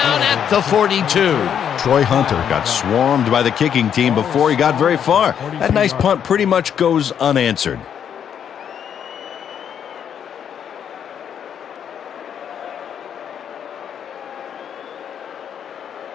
at the 42. Troy Hunter got swarmed by the kicking team before he got very far. That nice punt pretty much goes unanswered.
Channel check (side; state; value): right; quieter; 8.6 dB